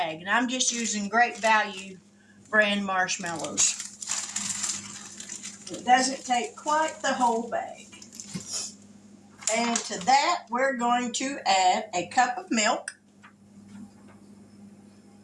And I'm just using Great Value brand marshmallows. It doesn't take quite the whole bag. And to that, we're going to add a cup of milk.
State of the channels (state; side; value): identical; both; correlation 1.00